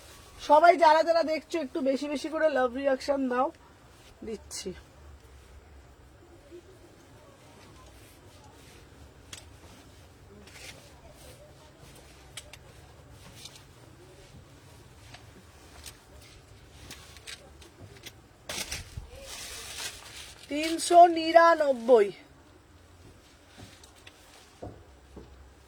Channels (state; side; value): identical; both; correlation 1.00